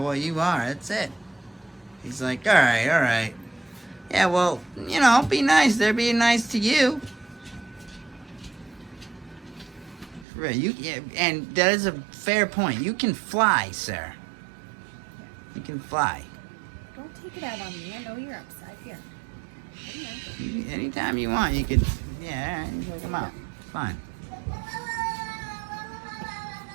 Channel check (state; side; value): drops out; left; at 10.2 s